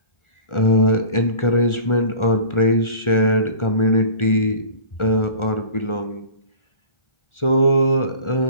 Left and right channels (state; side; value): late; right; 1.4 ms